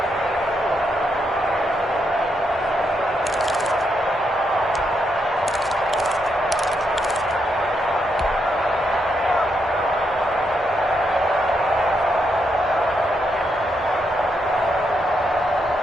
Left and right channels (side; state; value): both; normal; correlation 0.80